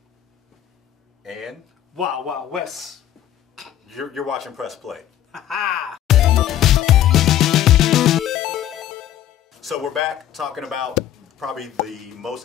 And Wild Wild West. you're watching Press Play. So we're back talking about probably the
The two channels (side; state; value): right; quieter; 11.7 dB